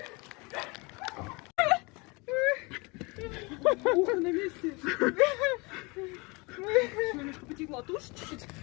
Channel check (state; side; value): quieter; right; 27.2 dB